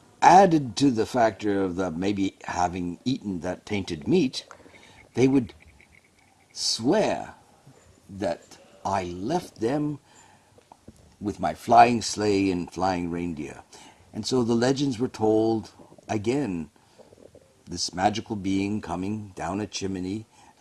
added to the factor of the maybe having eaten that tainted meat, they would swear that I left them with my flying sleigh and flying reindeer. And so the legends were told again, this magical being coming down a chimney,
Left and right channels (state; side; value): identical; both; correlation 1.00